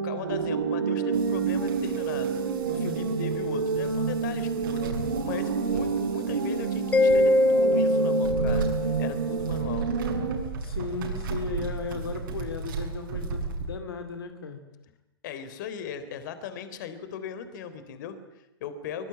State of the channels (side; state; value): both; normal; correlation 0.09